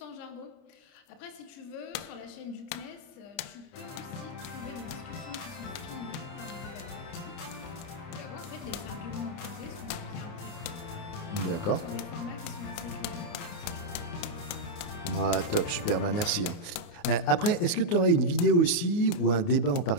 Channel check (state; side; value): late; right; 29 ms